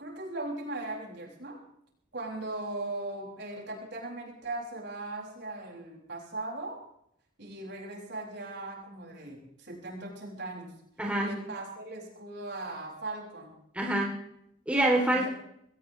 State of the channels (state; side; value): normal; both; correlation 0.37